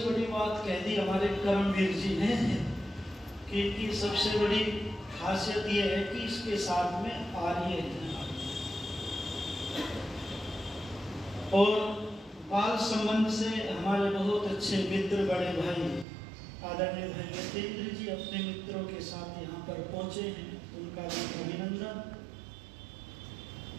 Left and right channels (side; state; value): left; drops out; at 16.1 s